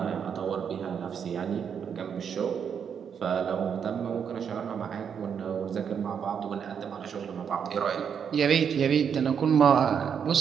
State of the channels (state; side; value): quieter; left; 7.4 dB